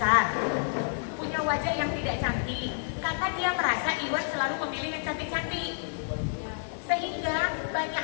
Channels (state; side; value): silent; right; 58 dB below the other